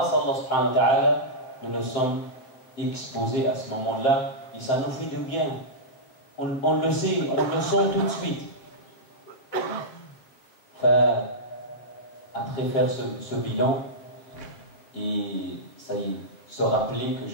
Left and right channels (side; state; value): right; late; 7.8 ms